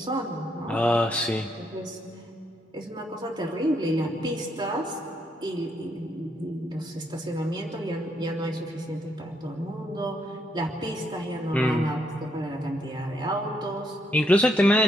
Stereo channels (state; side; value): normal; both; correlation 0.75